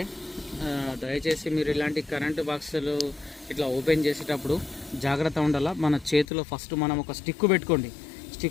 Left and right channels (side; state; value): right; drops out; at 6.2 s